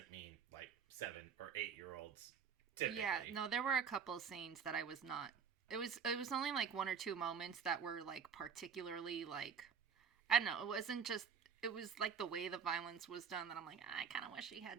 mean like 7 or 8-year-olds typically. Yeah, no, there were a couple scenes that I was not. It was only like one or two moments that were like particularly like, I don't know, it wasn't just, it was like the way the violence was done that I'm like, I kind of wish he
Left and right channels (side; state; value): left; quieter; 6.8 dB